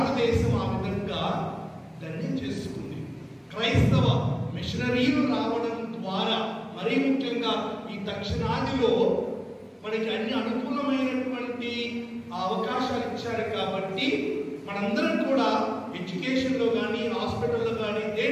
ఆ విధంగా ధన్యం చేసుకుంది. క్రైస్తవ మిషనరీలు రావడం ద్వారా, మరీ ముఖ్యంగా ఈ దక్షిణాదిలో మనకి అన్ని అనుకూలమైనటువంటి అవకాశాలు ఇచ్చారు కాబట్టి మనందరం కూడా ఎడ్యుకేషన్లో కానీ, హాస్పిటల్లో కానీ,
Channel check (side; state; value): both; identical; correlation 1.00